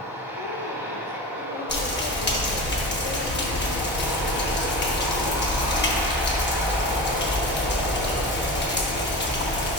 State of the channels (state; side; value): normal; both; correlation 0.28